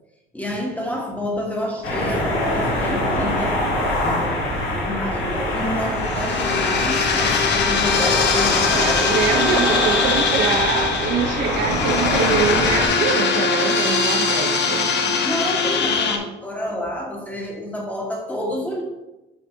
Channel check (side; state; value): both; normal; correlation 0.24